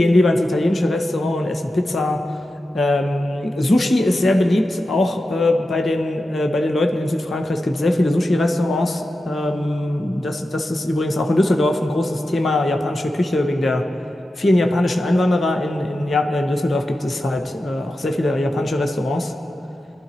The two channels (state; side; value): normal; both; correlation 0.91